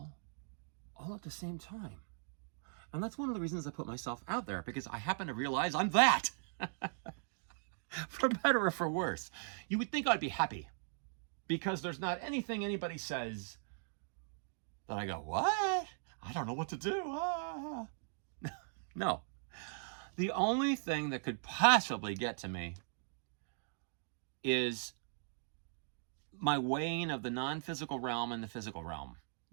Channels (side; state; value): left; silent; digital silence